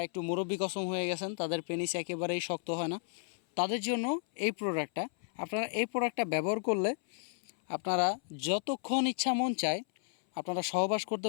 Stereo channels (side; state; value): right; silent; 56 dB below the other